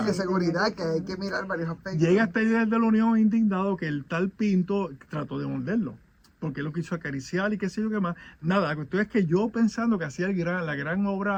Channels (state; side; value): identical; both; correlation 1.00